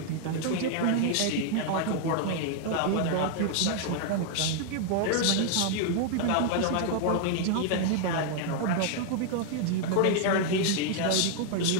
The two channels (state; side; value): different; both; correlation 0.00